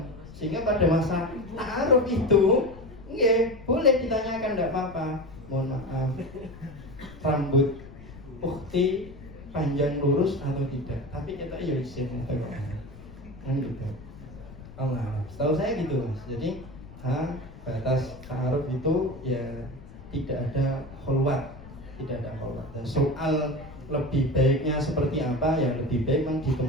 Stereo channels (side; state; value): left; noise; rumble, 17 dB below the sound